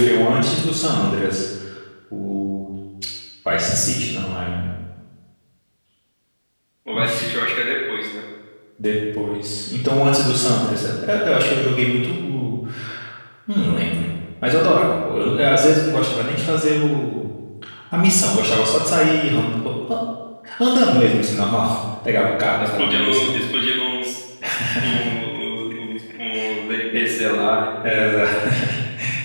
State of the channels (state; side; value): inverted; both; correlation -1.00